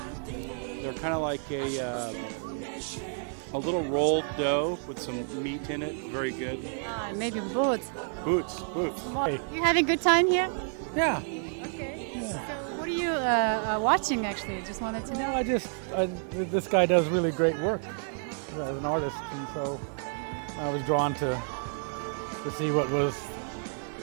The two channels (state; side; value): silent; left; 58 dB below the other